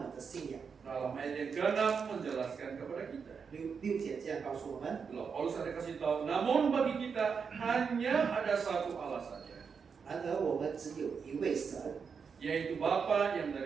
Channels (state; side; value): quieter; left; 6.0 dB